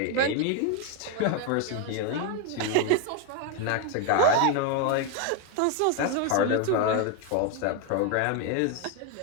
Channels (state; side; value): different; both; correlation 0.01